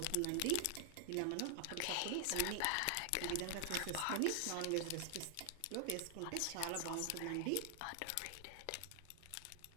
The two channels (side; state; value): both; different; correlation 0.00